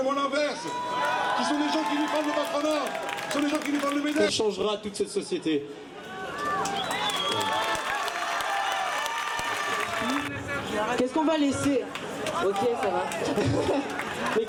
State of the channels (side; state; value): both; identical; correlation 1.00